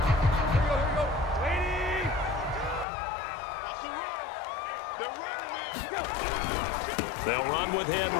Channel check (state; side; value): drops out; right; at 2.9 s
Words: They'll run with